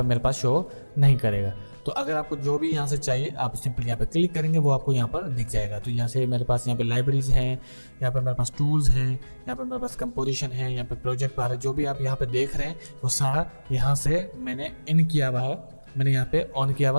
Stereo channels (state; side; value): inverted; both; correlation -1.00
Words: मेरे पास शो नहीं करेगा। तो अगर आपको जो भी यहाँ से चाहिए आप सिंपल यहाँ पे क्लिक करेंगे, वो आपको यहाँ पर दिख जाएगा। तो यहाँ से मेरे पास यहाँ पे लाइब्रेरीज हैं, यहाँ पे मेरे पास टूल्स हैं, यहाँ पे मेरे पास कंपोजिशन है, यहाँ पे प्रोजेक्ट बार है। जो भी आप यहाँ पे देख रहे हैं वो सारा यहाँ से मैंने इन किया हुआ है, मैंने यहाँ पे ऑन किया हुआ